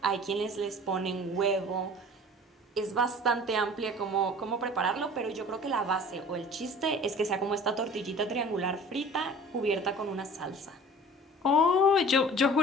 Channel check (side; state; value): both; normal; correlation 0.44